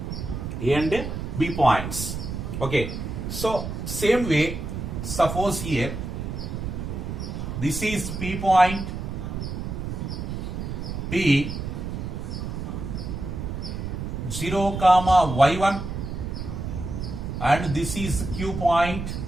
A and B points. Okay, so same way, suppose here this is P point, P 0 comma y1 and this is Q point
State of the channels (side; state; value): right; noise; rumble, 5 dB below the sound